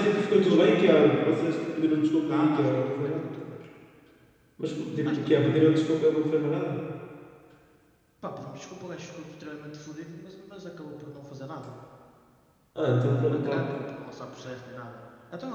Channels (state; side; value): identical; both; correlation 1.00